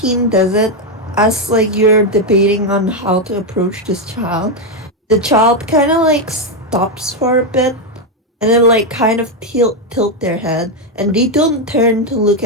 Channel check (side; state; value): both; normal; correlation 0.04